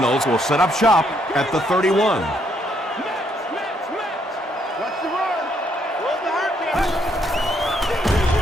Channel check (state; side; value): normal; both; correlation 0.72